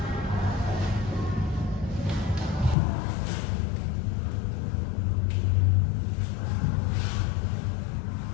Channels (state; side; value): drops out; right; at 2.8 s